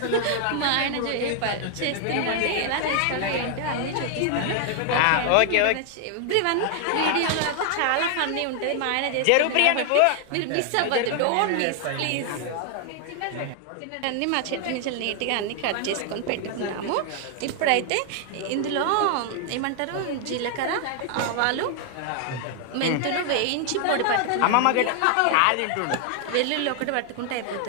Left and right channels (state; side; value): different; both; correlation 0.00